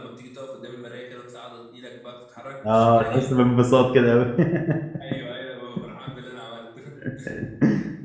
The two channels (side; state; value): both; identical; correlation 1.00